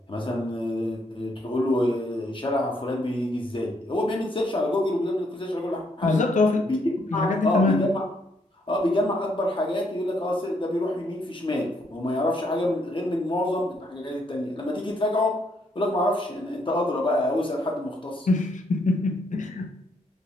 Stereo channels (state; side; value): normal; both; correlation 0.72